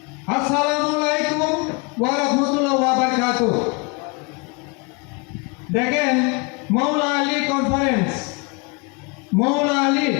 আসসালামু আলাইকুম ওয়া রাহমাতুল্লাহি ওয়া বারাকাতুহু। দেখেন, মৌলা আলী কনফারেন্স,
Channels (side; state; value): right; quieter; 29.8 dB